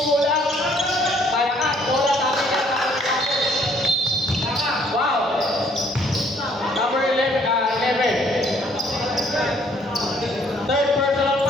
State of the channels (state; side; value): normal; both; correlation 0.63